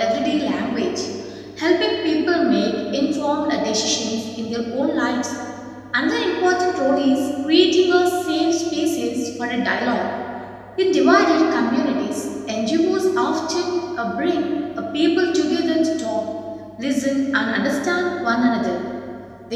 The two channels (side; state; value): both; identical; correlation 1.00